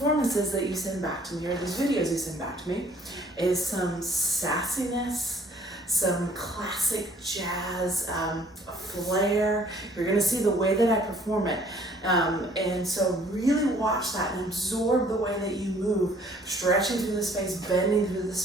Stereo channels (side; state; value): both; normal; correlation 0.59